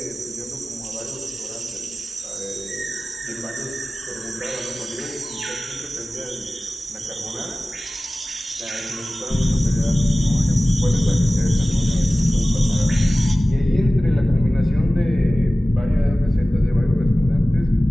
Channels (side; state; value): both; normal; correlation 0.97